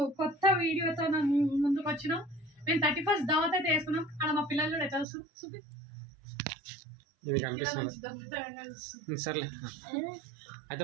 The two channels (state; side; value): drops out; left; at 5.1 s